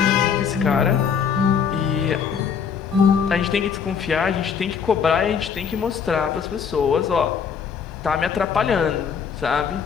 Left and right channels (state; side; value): quieter; right; 6.8 dB